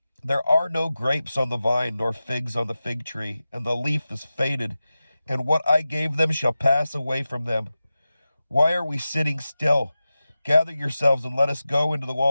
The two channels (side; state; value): both; inverted; correlation -0.94